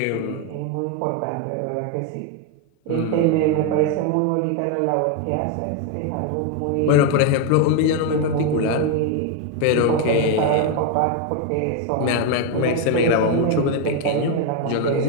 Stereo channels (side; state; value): both; different; correlation 0.01